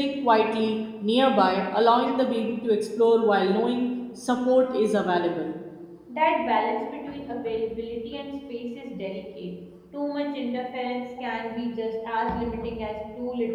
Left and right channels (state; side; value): identical; both; correlation 1.00